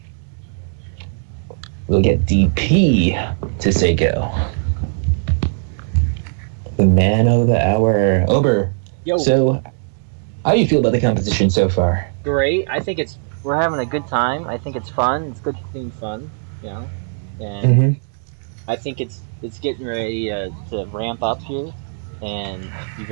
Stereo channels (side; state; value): left; silent; digital silence